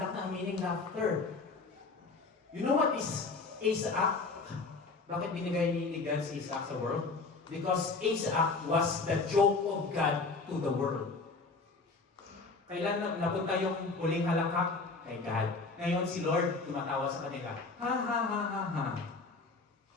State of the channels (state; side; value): quieter; right; 4.0 dB